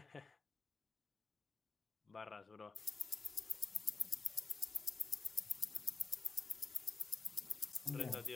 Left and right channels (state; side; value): quieter; right; 4.3 dB